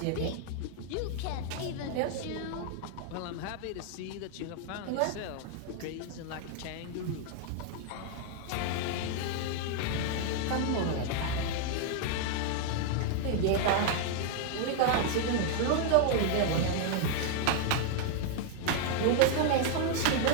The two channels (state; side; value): different; both; correlation 0.00